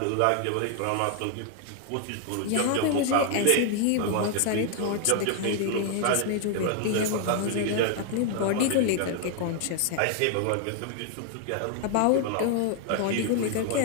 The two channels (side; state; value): both; different; correlation 0.00